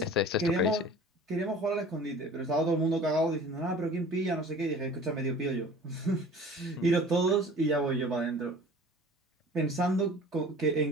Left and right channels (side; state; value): both; normal; correlation 0.44